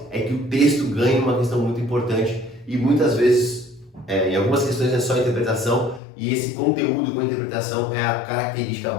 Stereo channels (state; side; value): drops out; right; at 6.0 s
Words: é que o texto ganha uma questão muito importante e muitas vezes, em algumas questões é só interpretação, e esse conteúdo com interpretação é a característica